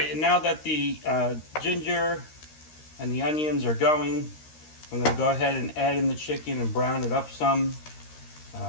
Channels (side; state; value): right; late; 13 ms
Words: and now that the ginger and the onions are going, I'm going to go ahead and add in the chicken and brown it up some